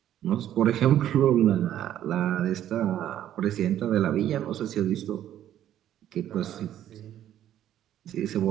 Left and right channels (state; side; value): quieter; left; 11.5 dB